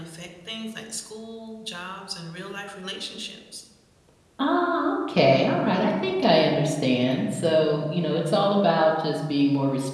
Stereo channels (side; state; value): both; identical; correlation 1.00